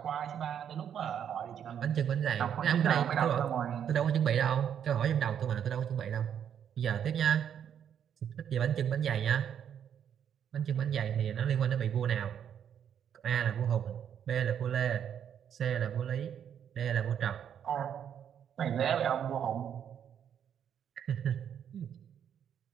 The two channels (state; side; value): quieter; left; 8.8 dB